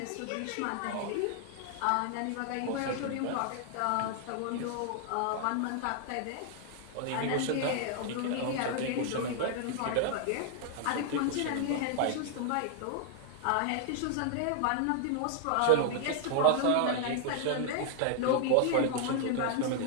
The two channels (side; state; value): both; different; correlation 0.00